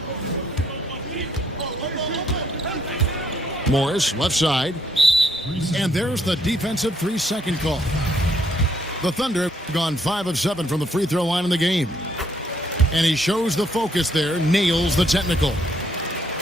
Morris, left side. And there's the defensive 3-second call. The Thunder have gone 5 of 7 from the free throw line in the game. And he shows the focus there, nails the technical.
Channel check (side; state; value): both; normal; correlation 0.70